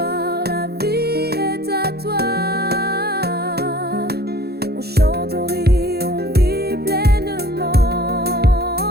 la vie est à toi. On chante, on rit, on vit pleinement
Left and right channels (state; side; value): late; left; 0.46 ms